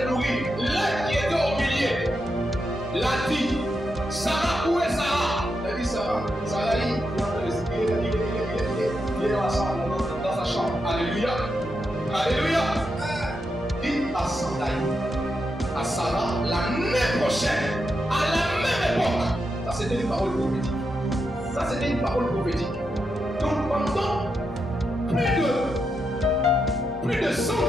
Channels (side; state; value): both; normal; correlation 0.85